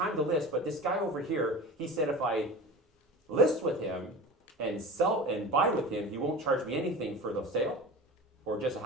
to list, but this guy over here, he said if I list with him and sell and buy with him, he won't charge me anything for the sale, or just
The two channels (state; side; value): normal; both; correlation 0.34